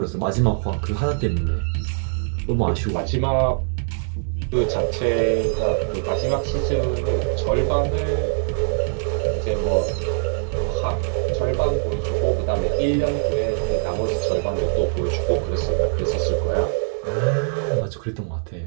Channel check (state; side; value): silent; left; 60 dB below the other